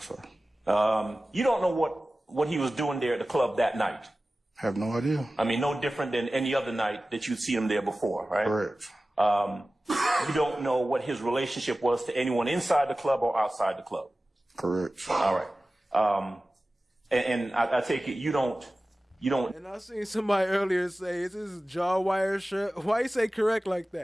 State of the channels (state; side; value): normal; both; correlation 0.96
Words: sorry. You don't know what he was doing there at the club that night. Have no idea. I mean, no different than any other night that you'd seen him there before, right? Correct. You don't know what his relationship was to anyone inside the club or outside the club. Correct. All right. And I take it you don't. And I seen somebody earlier say, "Is this jaw wire shirt?" Why you say correct like